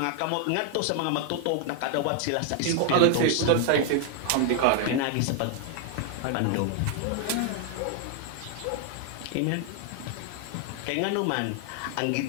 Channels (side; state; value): both; different; correlation 0.00